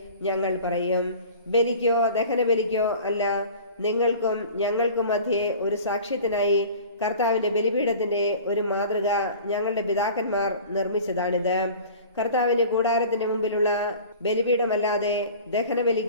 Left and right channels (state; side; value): inverted; both; correlation -0.42